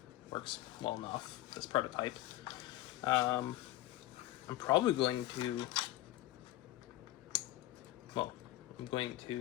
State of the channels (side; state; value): right; quieter; 16.0 dB